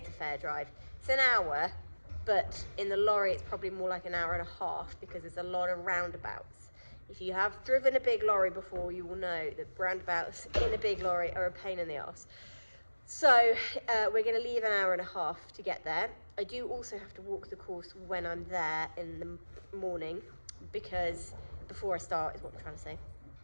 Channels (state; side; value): inverted; both; correlation -1.00